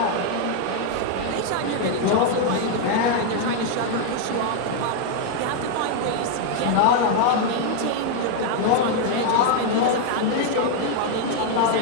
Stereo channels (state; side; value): different; both; correlation 0.00